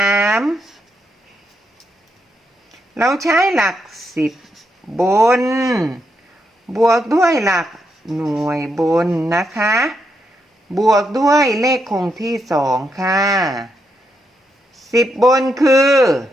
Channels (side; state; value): both; normal; correlation 0.81